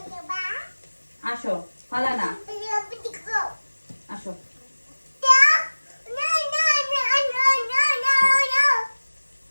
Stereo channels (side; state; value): both; inverted; correlation -1.00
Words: আসো, ফালা না, আসো।